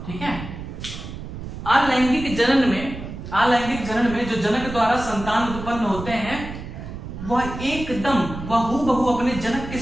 ठीक है, अलैंगिक जनन में जो जनक द्वारा संतान उत्पन्न होते हैं वह हूबहू अपने जनक के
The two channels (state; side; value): noise; right; rumble, 9 dB below the sound